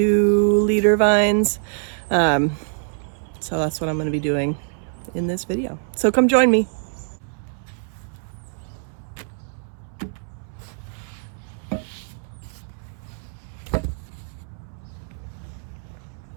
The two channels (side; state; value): left; silent; 63 dB below the other